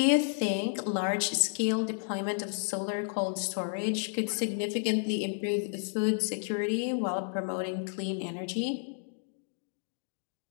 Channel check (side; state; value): right; silent; digital silence